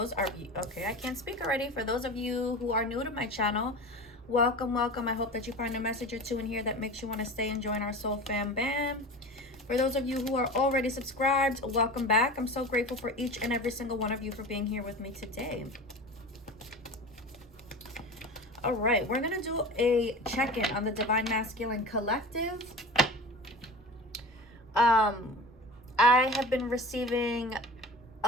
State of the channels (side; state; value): both; normal; correlation 0.34